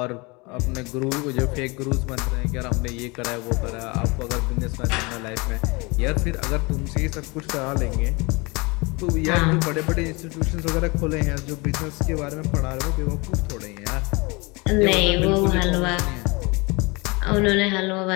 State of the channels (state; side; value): quieter; right; 26.8 dB